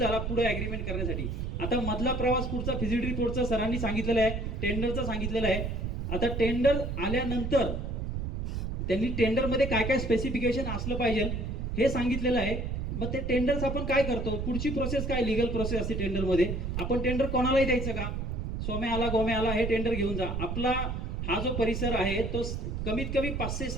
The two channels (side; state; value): right; noise; rumble, 3 dB below the sound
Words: पुढे ॲग्रीमेंट करण्यासाठी. आता मधला प्रवास पुढचा फिजिबिलिटी रिपोर्टचा सरांनी सांगितलेला आहे, टेंडरचा सांगितलेला आहे. आता टेंडर आल्यानंतर त्यांनी टेंडरमध्ये काय काय स्पेसिफिकेशन असलं पाहिजे हे सांगितलेलं आहे. मग ते टेंडर्स आपण काय करतो, पुढची प्रोसेस काय, लिगल प्रोसेस असते टेंडरमध्ये. आपण टेंडर कोणालाही द्यायचं का? सोम्या आला गोम्या आला हे टेंडर घेऊन जा. आपला हा जो परिसर आहे तो कमीत कमी